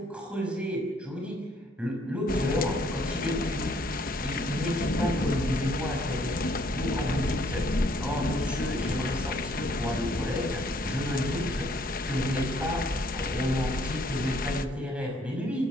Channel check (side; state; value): both; normal; correlation 0.65